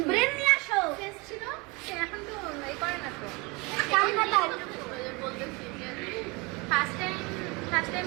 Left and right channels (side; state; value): left; quieter; 27.0 dB